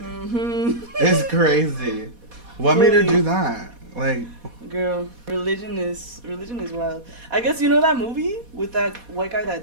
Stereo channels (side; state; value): left; late; 4.2 ms